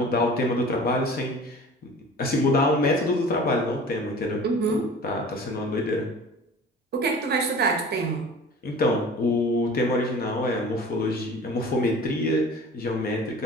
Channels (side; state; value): both; normal; correlation 0.42